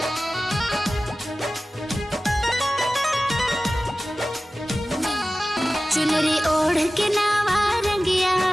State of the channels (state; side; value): normal; both; correlation 0.96